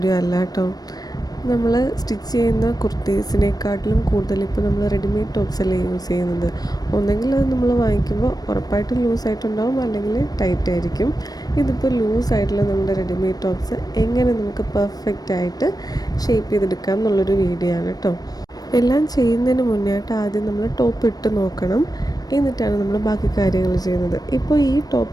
അല്ല കേട്ടോ. നമ്മൾ സ്റ്റിച്ച് ചെയ്യുന്ന കുർത്തീസിനെക്കാട്ടിലും കൂടുതൽ ഇപ്പോൾ നമ്മൾ റെഡിമെയ്ഡ് ടോപ്സ് അല്ലേ യൂസ് ചെയ്യുന്നത്. ഒന്നെങ്കിൽ അത് നമ്മൾ വാങ്ങിക്കുമ്പോൾ ഉറപ്പായിട്ടും ലൂസായിട്ടുണ്ടാവും, അല്ലെങ്കിൽ ടൈറ്റ് ആയിരിക്കും. ഇതിപ്പോൾ ലൂസായിട്ടുള്ള നമ്മുടെ റെഡിമെയ്ഡ് ടോപ്സ് എങ്ങനെ നമുക്ക് പെർഫെക്റ്റ് ആയിട്ട് ഷേപ്പ് ചെയ്തെടുക്കാം എന്നുള്ളൊരു വീഡിയോ ആണ് കേട്ടോ. എല്ലാം ചെയ്യുന്നതിന് മുന്നേയായിട്ട് ആദ്യം നമ്മൾ ടോപ്പ് ഇട്ട് നോക്കണം, എന്നിട്ടാണ് നമ്മൾ ബാക്കി കാര്യങ്ങൾ ചെയ്യുന്നത്. ഇപ്പോൾ ഈ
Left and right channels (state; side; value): late; right; 0.19 ms